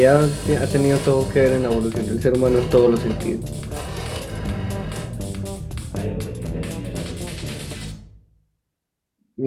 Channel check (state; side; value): identical; both; correlation 1.00